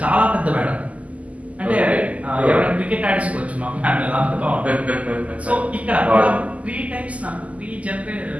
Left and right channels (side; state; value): left; late; 0.070 ms